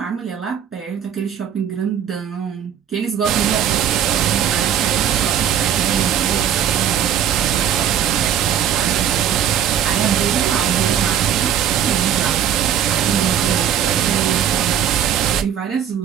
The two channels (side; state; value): left; quieter; 9.4 dB